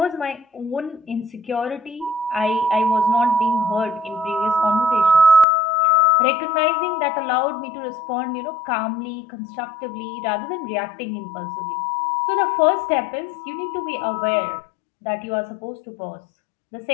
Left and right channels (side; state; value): right; drops out; at 5.5 s